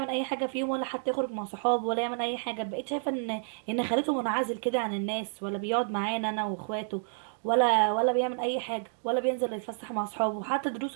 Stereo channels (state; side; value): silent; left; digital silence